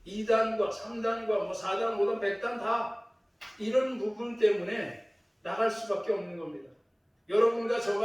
2단과 3단과 4단, 5단, 100단 다 이런 부분 때문에 나갈 수밖에 없는 겁니다. 여러분과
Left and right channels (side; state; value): both; identical; correlation 1.00